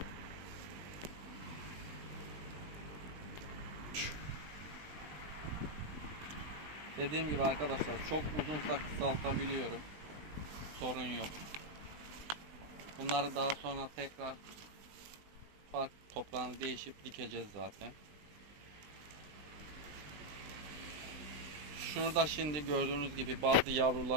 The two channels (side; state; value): left; late; 20 ms